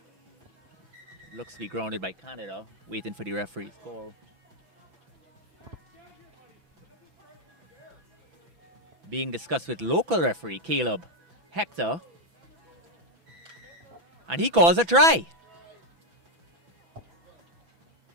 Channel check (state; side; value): late; left; 6.0 ms